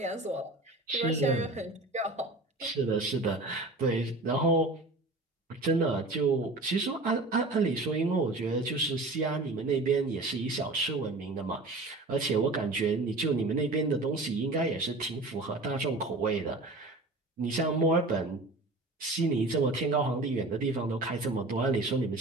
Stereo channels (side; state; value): left; quieter; 3.0 dB